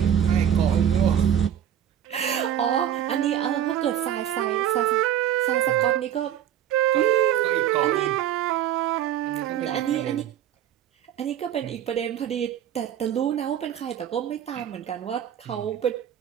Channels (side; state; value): left; quieter; 10.3 dB